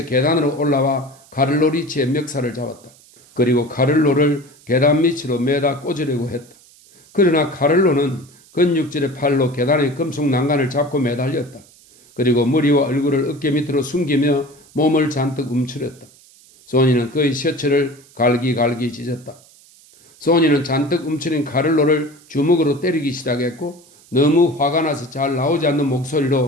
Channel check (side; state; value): right; noise; hiss, 27 dB below the sound